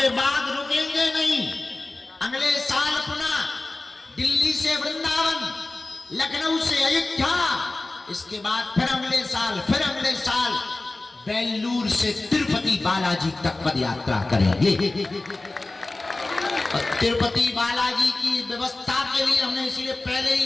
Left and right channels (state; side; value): quieter; right; 3.0 dB